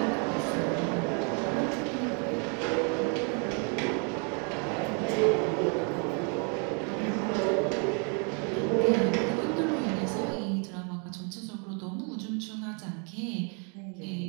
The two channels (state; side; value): quieter; left; 37.8 dB